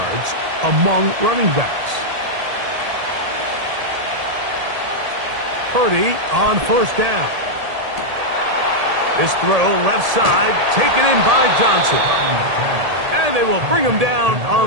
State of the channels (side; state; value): left; late; 1.8 ms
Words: among running backs. Purdy on 1st down. This throw left side taken in by Johnson. And they will bring him down